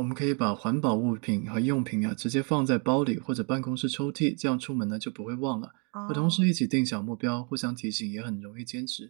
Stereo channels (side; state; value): left; quieter; 36.8 dB